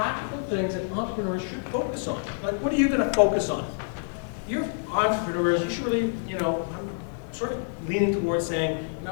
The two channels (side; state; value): right; silent; 60 dB below the other